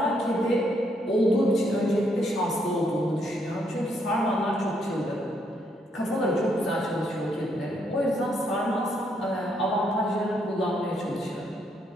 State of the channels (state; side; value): normal; both; correlation 0.74